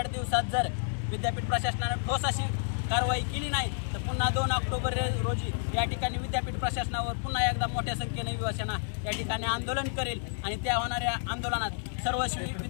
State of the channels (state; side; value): silent; right; digital silence